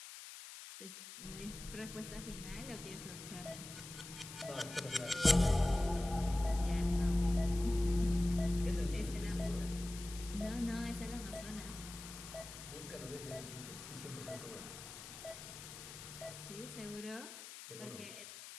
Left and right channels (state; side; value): noise; left; hiss, 12 dB below the sound